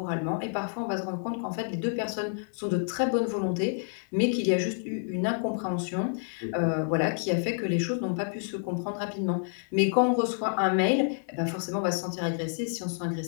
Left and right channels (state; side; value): silent; right; digital silence